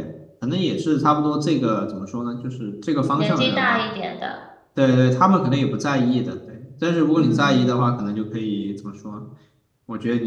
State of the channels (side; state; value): both; identical; correlation 1.00